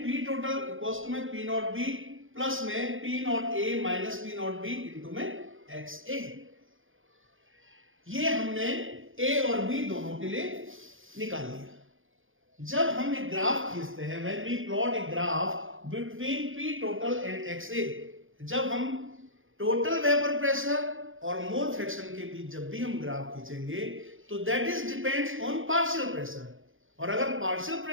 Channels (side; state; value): left; late; 0.58 ms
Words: P total equals to में P naught B प्लस में P naught A minus P naught B into में XA. ये हमने A और B दोनों के लिए निकाल लिया. जब हम एक ग्राफ खींचते हैं, when we plot a graph between P total and XA, जब हम टोटल वेपर प्रेशर और मोल फ्रैक्शन के बीच जब भी हम ग्राफ खींचेंगे तो that is depends on partial pressure, और अगर पार्शियल